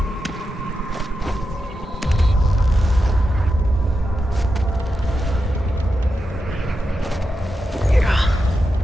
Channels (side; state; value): both; normal; correlation 0.88